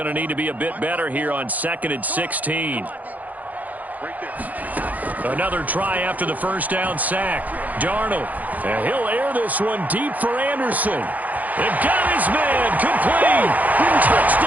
to need to be a bit better here on 2nd and 16. Another try after the first down sack. Darnold, and he'll air this one deep for Anderson. They've got his man, complete.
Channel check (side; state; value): left; late; 0.080 ms